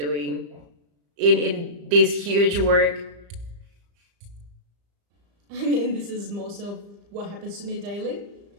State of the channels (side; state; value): left; late; 35 ms